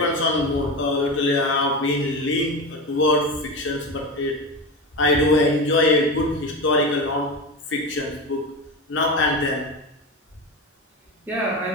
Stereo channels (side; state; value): both; normal; correlation 0.22